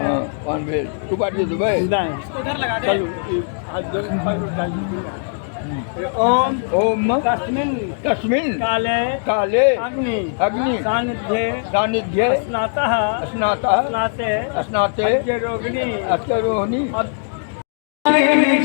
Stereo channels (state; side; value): silent; right; digital silence